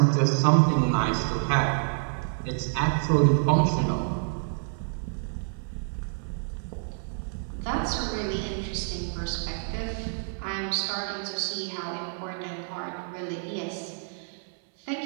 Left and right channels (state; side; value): silent; left; 59 dB below the other